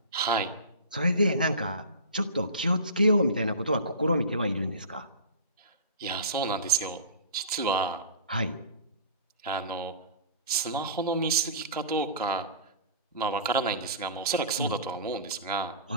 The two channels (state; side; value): inverted; both; correlation -0.35